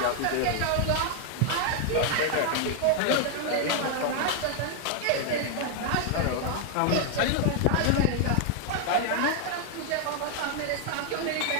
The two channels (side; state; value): both; different; correlation 0.00